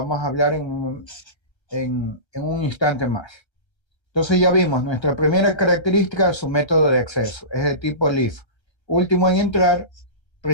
a hablar en un instante más. Entonces ya vimos, nuestra primera característica es su método de acceso, es de tipo LIFO. Último en entrar,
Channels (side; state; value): right; late; 1.3 ms